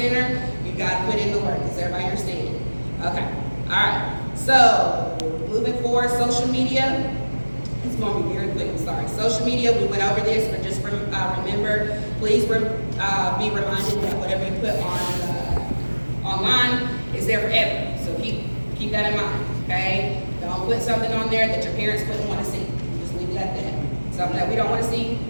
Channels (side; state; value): both; inverted; correlation -1.00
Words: you got to put in the work. Does everybody understand? Okay, all right. So, moving forward, social media. It's going to be very quick, I'm sorry. Social media, we went over this, but just remember, please be reminded that whatever you put on online is there forever. So keep that in mind, okay? Don't put something on there that your parents wouldn't want to see. Just leave it at that. Something that we don't want to see,